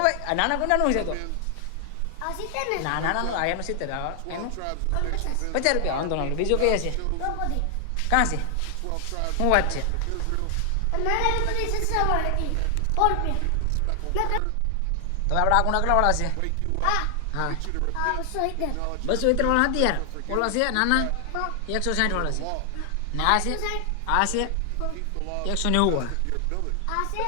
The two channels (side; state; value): both; different; correlation 0.00